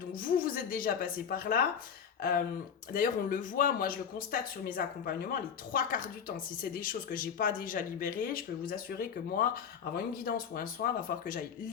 vous êtes déjà passé par là. D'ailleurs, on le voit, moi je le constate sur mes accompagnements, les 3/4 du temps, si c'est des choses que j'ai pas déjà libérées, je peux vous assurer que moi, avant une guidance ou un soin, il va falloir que j'aille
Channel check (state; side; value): quieter; right; 7.4 dB